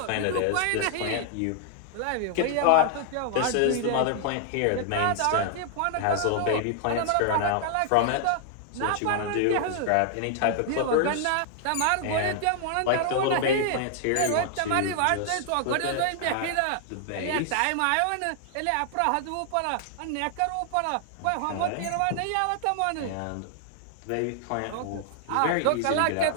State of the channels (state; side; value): different; both; correlation 0.00